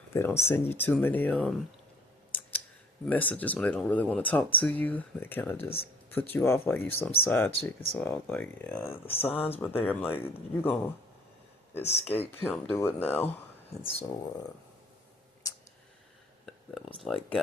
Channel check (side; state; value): both; normal; correlation 0.54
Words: don't send you too many messages when they don't really want to talk to you. They kind of just put you off like you some side chick. And so I was like, yeah, the signs were there. I'm like, you gonna escape him, do it now. And so that was like